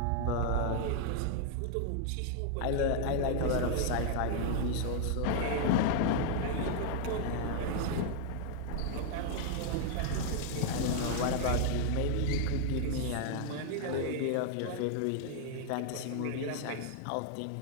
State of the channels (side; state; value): both; different; correlation 0.00